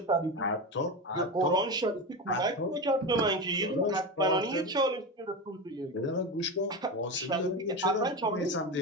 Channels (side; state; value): both; normal; correlation 0.20